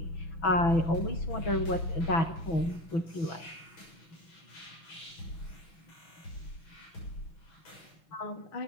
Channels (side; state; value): right; late; 6.0 ms